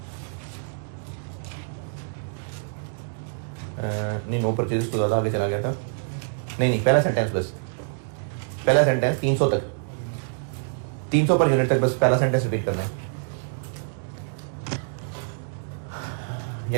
नहीं, नो परचेजेस तो ज़्यादा आगे चला गया था। नहीं, पहला सेंटेंस बस, पहला सेंटेंस 300 तक, 300 पर यूनिट तक बस पहला सेंटेंस रिपीट करना है।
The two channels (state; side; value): silent; left; digital silence